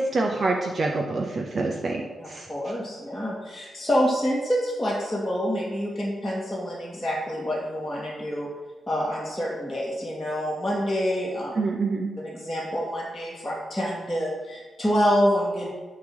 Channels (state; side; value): normal; both; correlation 0.88